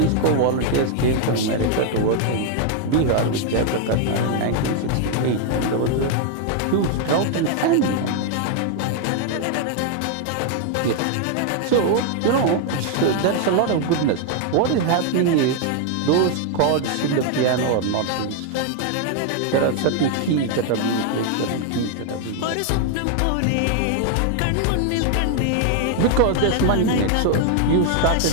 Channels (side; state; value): both; different; correlation 0.00